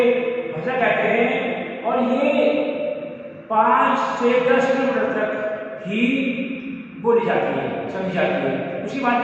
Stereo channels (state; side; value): identical; both; correlation 1.00